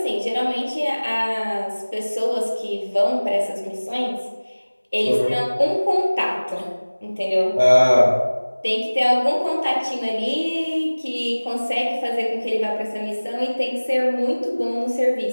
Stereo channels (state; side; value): inverted; both; correlation -1.00